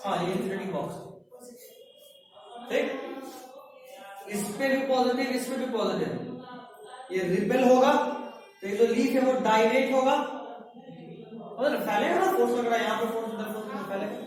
हाँ, ये इंसुलेटिंग बॉक्स, ठीक। इस पे भी पॉजिटिव, इस पे भी पॉजिटिव, ये रिपेल होगा, तो ये जो लीफ है वो डायलेट होगा, मतलब फैलेगा ना, फोर्स लग रहा है यहाँ पे, फोर्स इधर, फोर्स फैलेगा।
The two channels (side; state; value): both; identical; correlation 1.00